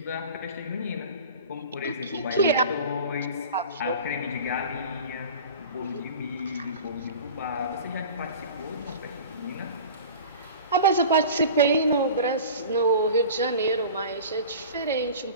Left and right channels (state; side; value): inverted; both; correlation -0.38